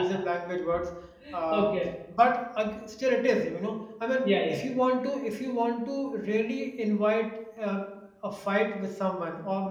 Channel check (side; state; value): both; identical; correlation 1.00